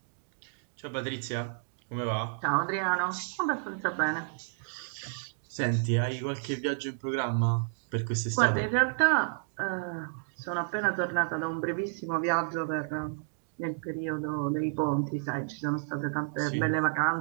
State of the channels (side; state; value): left; silent; digital silence